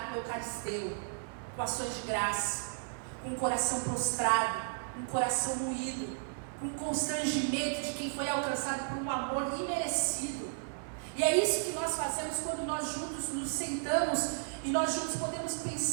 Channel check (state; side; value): silent; left; 55 dB below the other